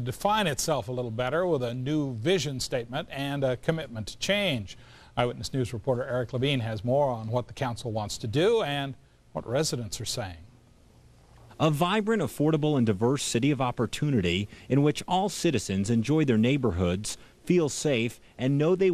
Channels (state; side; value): identical; both; correlation 1.00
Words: itself a little better with a new vision statement and a commitment to change. Eyewitness News reporter Eric Levine has more on what the council wants to do and what residents are saying. A vibrant, affordable, and diverse city of opportunity in which all citizens enjoy their neighborhoods, feel safe, and know they